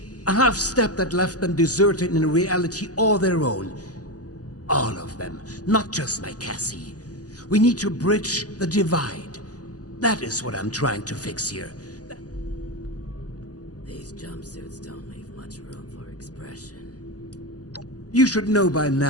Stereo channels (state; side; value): late; right; 0.67 ms